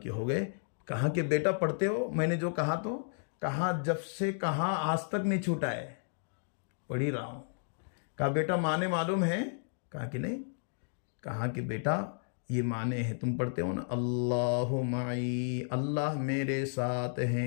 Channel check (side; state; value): right; silent; digital silence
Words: ہو گئے. کہا کہ بیٹا پڑھتے ہو؟ میں نے جو کہا تو کہا جب سے کہا آج تک نہیں چھوٹا ہے، پڑھ ہی رہا ہوں. کہا بیٹا معنی معلوم ہے؟ کہا کہ نہیں. کہا کہ بیٹا یہ معنی ہے تم پڑھتے ہو نا، اللہ معی، اللہ میرے ساتھ